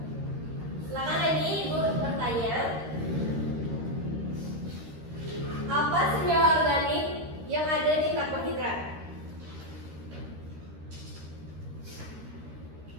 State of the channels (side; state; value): left; late; 13 ms